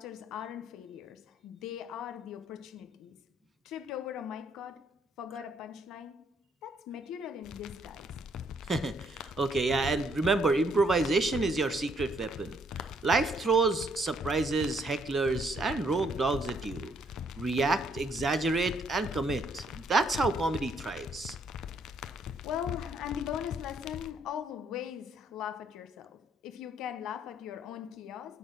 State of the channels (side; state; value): both; normal; correlation 0.69